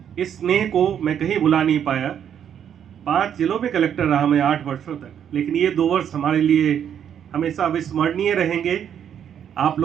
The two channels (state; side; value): quieter; left; 8.9 dB